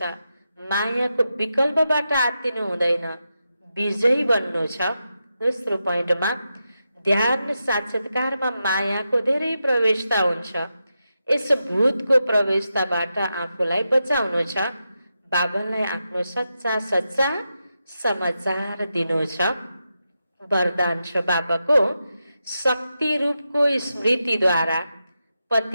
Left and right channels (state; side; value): inverted; both; correlation -0.88